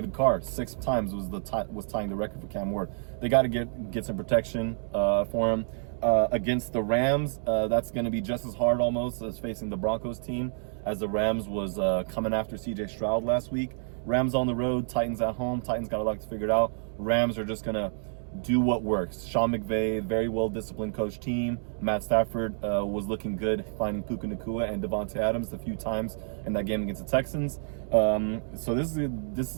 Carr 6 times was tying the record for Cam Ward. They got to get some protection for him. Against the Rams, that's going to be just as hard almost as facing the Broncos team, as the Rams was coming after CJ Stroud last week. Rams on the road, Titans at home. Titans got a lot to figure it out. Rams are just going to do what works. Sean McVay, very well-disciplined coach team. Matt Stafford was looking good, finding Puka Nacua and Devontae Adams a few times in that game against the Texans. So this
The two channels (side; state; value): left; silent; digital silence